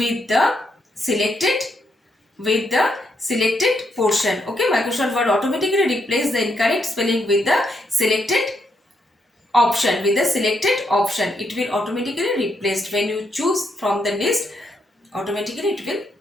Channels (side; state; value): both; normal; correlation 0.78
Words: the selected portion. Okay, Microsoft Word automatically replace the incorrect spelling with the selected option. With the selected option, it will automatically replaced. When you choose from the list, automatically it will